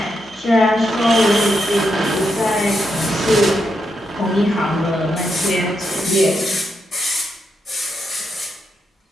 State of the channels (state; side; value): normal; both; correlation 0.82